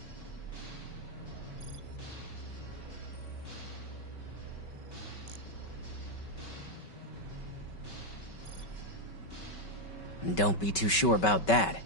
Don't be too sure about that.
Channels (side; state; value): right; late; 5.3 ms